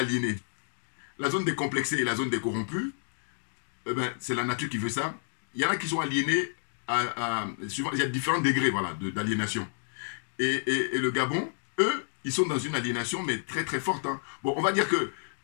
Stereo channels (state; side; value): silent; right; digital silence